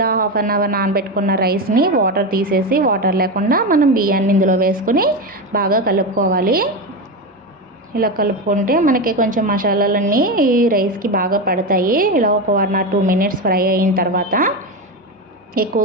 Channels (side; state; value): both; normal; correlation 0.16